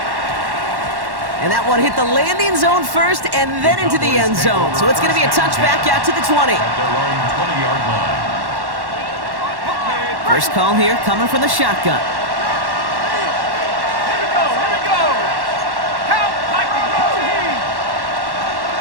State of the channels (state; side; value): late; left; 1.1 ms